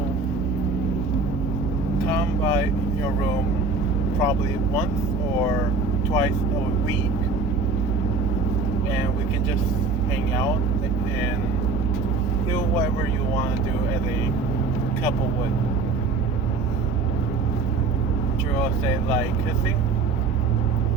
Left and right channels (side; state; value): left; quieter; 4.1 dB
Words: come by your room probably once or twice a week, and we can just hang out and do whatever you want to do as a couple would." Jiro said, "Like kissing?"